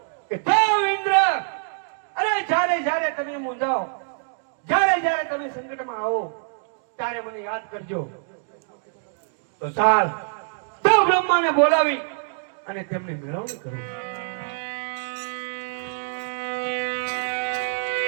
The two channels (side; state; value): left; silent; digital silence